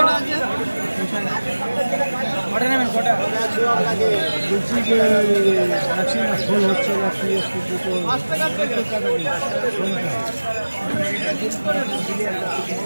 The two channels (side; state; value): both; inverted; correlation -1.00